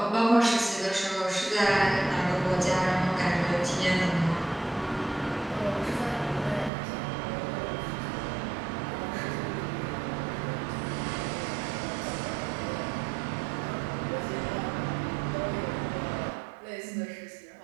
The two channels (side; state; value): left; drops out; at 6.7 s